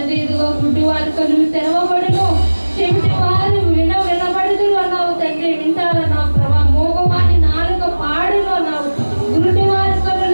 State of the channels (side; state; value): both; inverted; correlation -1.00